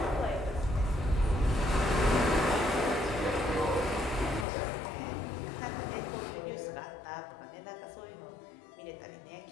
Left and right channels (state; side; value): drops out; right; at 4.5 s